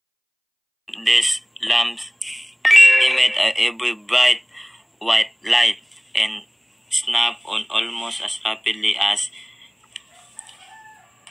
These lamps emit a very bright white light and snap on almost as rapidly as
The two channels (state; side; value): identical; both; correlation 1.00